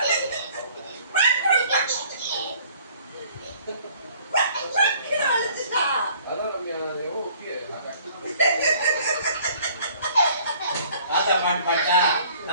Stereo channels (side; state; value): both; inverted; correlation -0.56